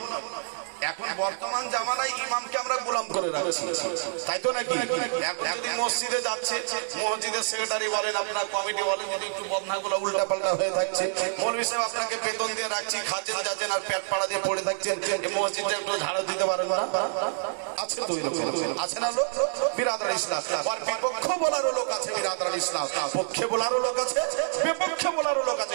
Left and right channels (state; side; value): silent; left; 59 dB below the other